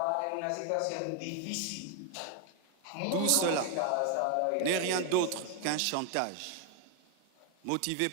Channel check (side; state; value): both; different; correlation 0.00